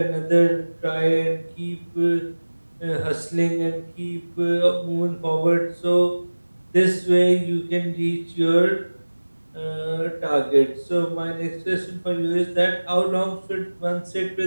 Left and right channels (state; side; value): inverted; both; correlation -1.00